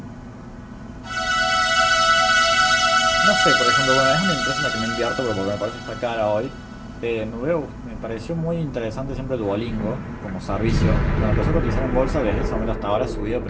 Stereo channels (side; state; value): both; identical; correlation 1.00